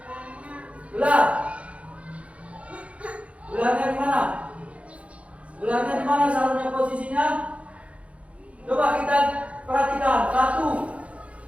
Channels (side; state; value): left; late; 0.063 ms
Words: Ular. Ularnya di mana? Ularnya di mana seharusnya posisinya? Coba kita perhatikan. 1,